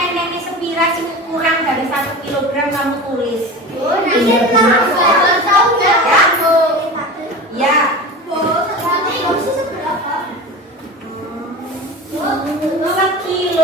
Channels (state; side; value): normal; both; correlation 0.31